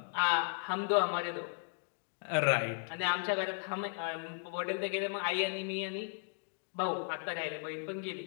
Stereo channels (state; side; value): silent; right; 54 dB below the other